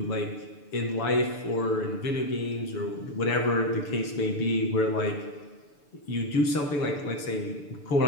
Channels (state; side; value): late; right; 6.8 ms